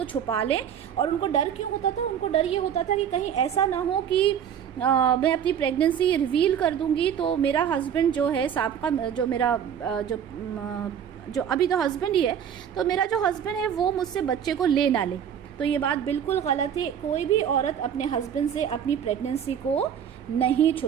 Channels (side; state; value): left; quieter; 8.7 dB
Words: چھپا لیں. اور ان کو ڈر کیوں ہوتا تھا؟ ان کو ڈر یہ ہوتا تھا کہ کہیں ایسا نہ ہو کہ میں اپنی پریگننسی ریویل کر دوں گی تو میرا ہسبینڈ جو ہے سابقہ جو میرا جو ابھی تو ہسبینڈ ہی ہے، تو میرا جو ہسبینڈ ہے وہ مجھ سے بچے کو لے نہ لے. تو یہ بات بالکل غلط ہے. کوئی بھی عورت اپنے ہسبینڈ سے اپنی پریگننسی کو نہیں